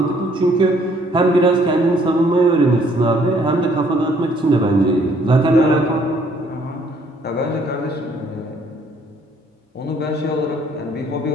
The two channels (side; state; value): both; normal; correlation 0.63